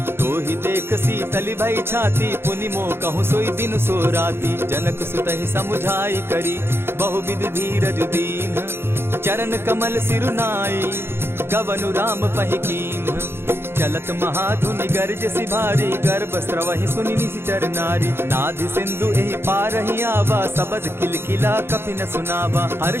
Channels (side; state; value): left; late; 0.11 ms